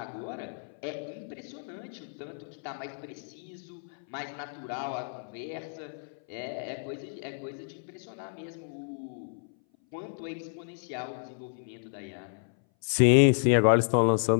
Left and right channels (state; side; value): silent; right; 57 dB below the other